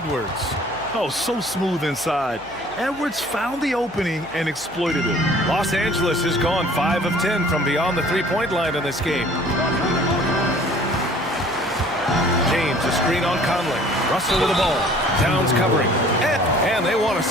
Oh, so smooth inside. Edwards found the opening and exploited it. Los Angeles has gone 5 of 10 from beyond the three-point line in this game. James, a screen on Conley. Russell with the ball. Towns covering. And they want a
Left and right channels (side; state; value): left; noise; hum, 26 dB below the sound